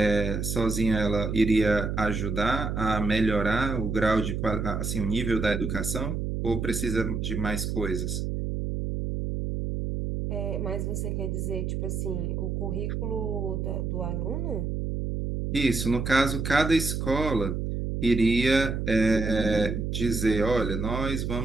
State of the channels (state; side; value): noise; right; hum, 2 dB below the sound